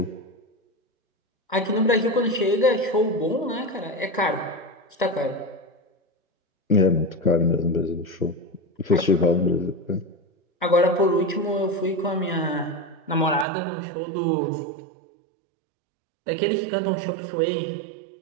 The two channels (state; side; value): drops out; left; at 13.5 s